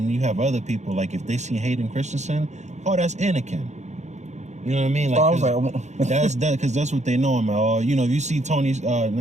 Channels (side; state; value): left; late; 0.33 ms